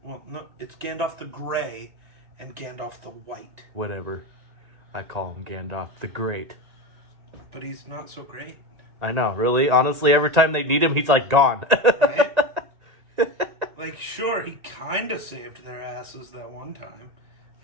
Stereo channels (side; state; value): left; late; 1.8 ms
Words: Well, no, it's Gandalf the Gray and Gandalf the White. Whatever. I call him Gandalf the Great. But he's not so great. I know, really. Honestly, every time they need him, he's like gone. Right? Like, sure, he kind of saved their asses that one time